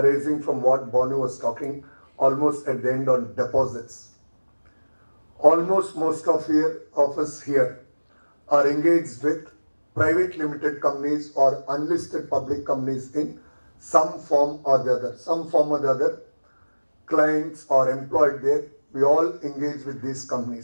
from what Bonu was talking almost at the end on deposits. Almost most of us here are engaged with private limited companies or unlisted public companies in some form or the other. Some form or the other, clients or employed there, we all engage with these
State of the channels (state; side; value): inverted; both; correlation -1.00